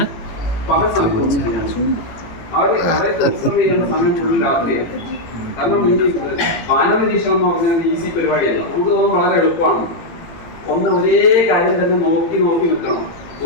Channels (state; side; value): late; right; 18 ms